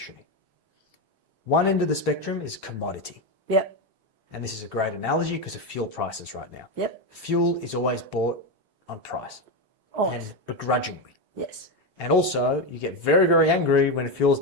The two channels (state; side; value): normal; both; correlation 0.11